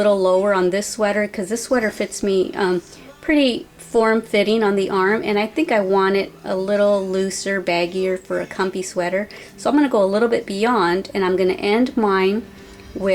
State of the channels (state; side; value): identical; both; correlation 1.00